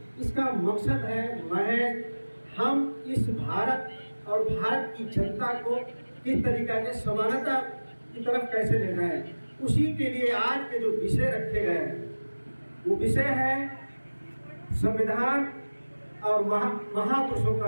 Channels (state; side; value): inverted; both; correlation -1.00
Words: इसका मकसद है महज हम इस भारत और भारत की जनता को किस तरीके से समानता की तरफ कैसे ले जाए, उसी के लिए आज के जो विषय रखे गए हैं वो विषय है संविधान और महापुरुषों